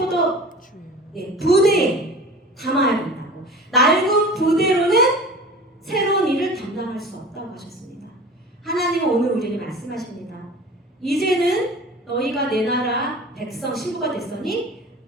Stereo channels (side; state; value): both; normal; correlation 0.39